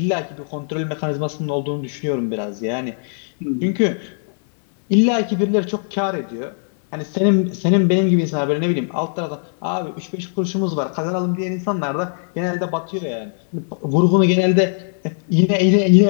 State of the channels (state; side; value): silent; right; 64 dB below the other